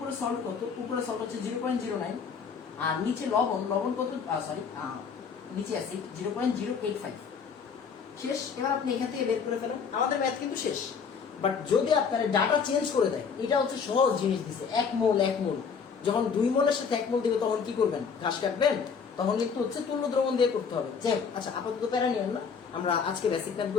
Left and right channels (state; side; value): quieter; right; 6.1 dB